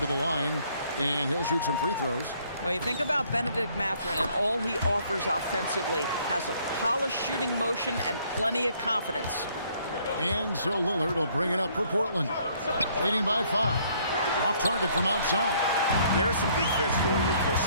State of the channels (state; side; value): inverted; both; correlation -0.64